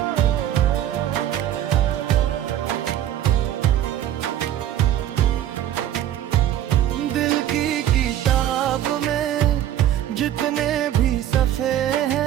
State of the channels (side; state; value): left; quieter; 11.6 dB